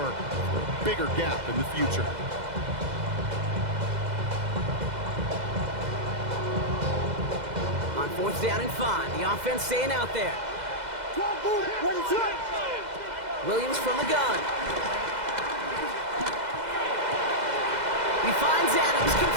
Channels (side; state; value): left; late; 2.0 ms